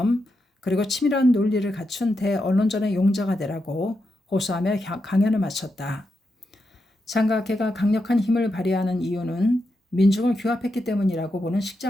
그리고 치밀한 논리를 갖춘 대언론전의 용자가 되라고 호소하며 강연을 마쳤다. 장각회가 강력한 힘을 발휘하는 이유는 민중을 규합했기 때문이라고 보는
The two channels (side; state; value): both; normal; correlation 0.86